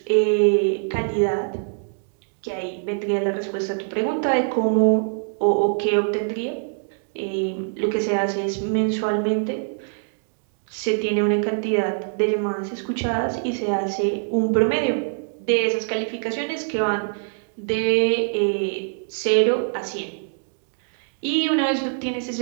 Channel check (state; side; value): silent; left; digital silence